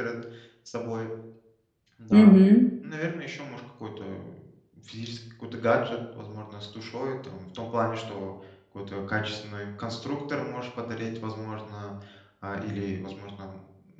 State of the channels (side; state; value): both; identical; correlation 1.00